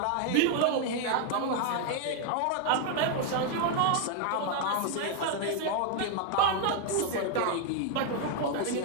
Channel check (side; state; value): both; different; correlation 0.00